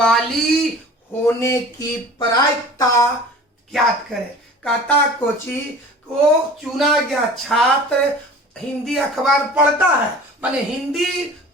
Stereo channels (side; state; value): both; normal; correlation 0.42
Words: होने की प्रायिकता ज्ञात करें। कहता कोची को चुना गया छात्र हिंदी अखबार पढ़ता है, माने हिंदी